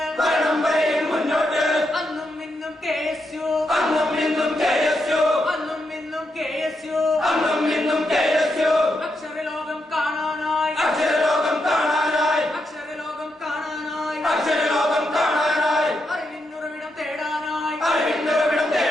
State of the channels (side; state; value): both; normal; correlation 0.83